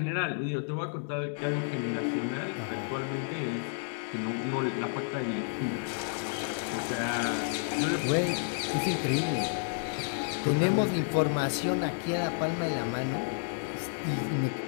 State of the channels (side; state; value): right; silent; digital silence